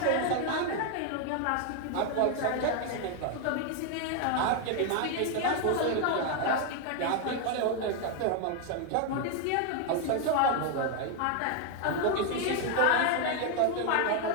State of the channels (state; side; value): different; both; correlation 0.01